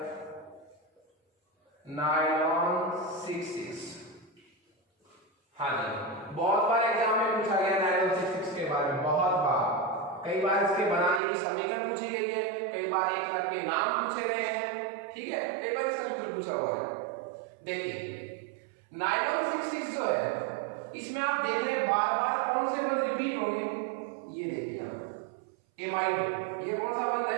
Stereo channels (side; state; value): left; drops out; at 11.2 s